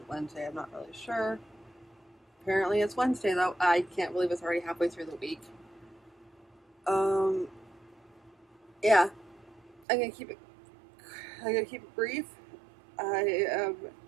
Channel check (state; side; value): drops out; left; at 9.9 s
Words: Wednesday? I'm not really sure. Apparently it's Wednesday though. I can't believe it's already halfway through the week. Yeah. I'm gonna keep it brief. I am